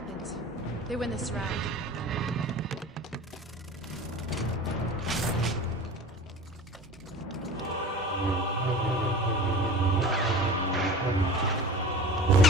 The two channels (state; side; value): normal; both; correlation 0.37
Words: They win this round.